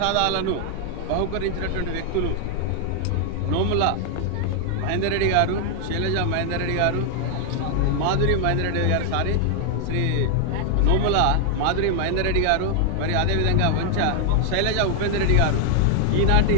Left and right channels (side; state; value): both; different; correlation 0.00